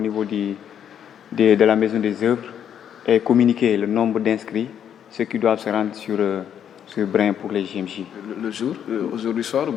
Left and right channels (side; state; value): right; quieter; 9.1 dB